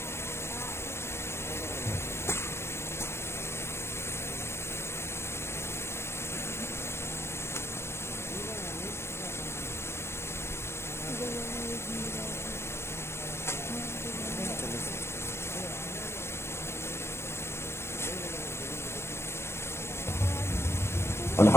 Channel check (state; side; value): late; right; 0.12 ms